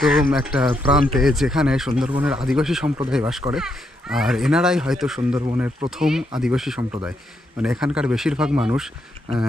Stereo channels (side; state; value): both; normal; correlation 0.79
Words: একটা প্রান্তে, যেখানে সুন্দরবনের আদিবাসী সম্প্রদায় বাস করে। আর এনারাই হয়তো সুন্দরবনের প্রথম আদিবাসী সম্প্রদায়। মানে এখানকার বেশিরভাগ মানুষ